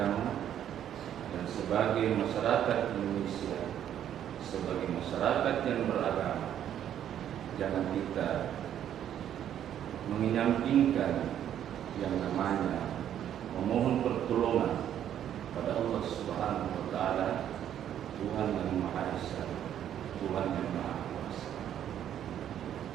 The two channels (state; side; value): quieter; left; 10.3 dB